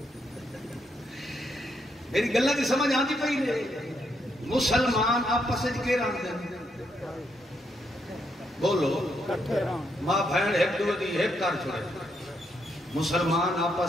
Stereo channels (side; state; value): both; normal; correlation 0.77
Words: میری گلاں دی سمجھ آندی پئی نے مسلمان آپس وچ کے رہندے بولو ماں بہن ایک دو دی ایک کر چھوڑے مسلمان